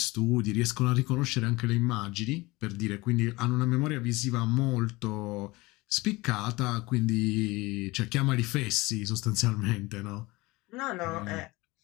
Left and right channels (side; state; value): right; quieter; 22.0 dB